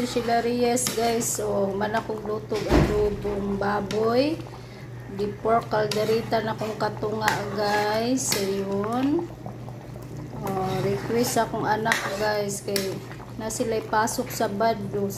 Sheila Reyes guys. So, manakong lutog adobong baboy. Di pork calderita na kong katunga guys. So, yun. Request akong anak guys. Kay na sila'y pasok sa bado.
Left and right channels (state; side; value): identical; both; correlation 1.00